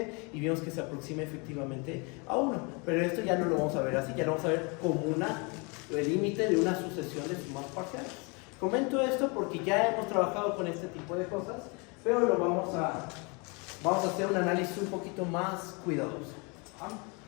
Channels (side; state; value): right; quieter; 31.1 dB